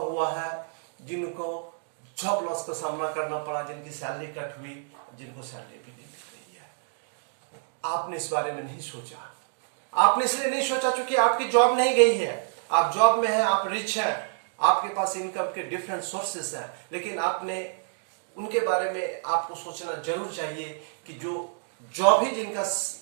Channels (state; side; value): silent; left; digital silence